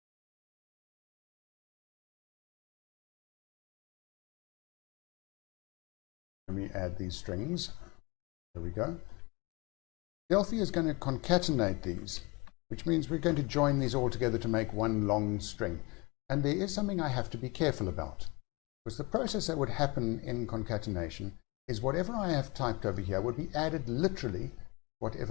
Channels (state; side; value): quieter; right; 26.7 dB